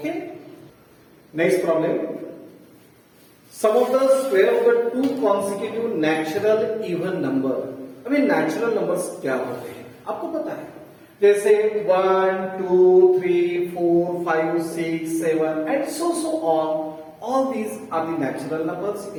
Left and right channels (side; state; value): both; identical; correlation 1.00